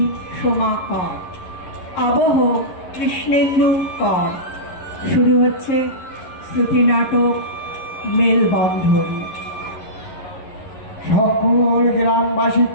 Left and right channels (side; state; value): right; late; 11 ms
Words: সোমা কর। আবহ কৃষ্ণেন্দু কর। শুরু হচ্ছে শ্রুতি নাটক মেলবন্ধন। সকল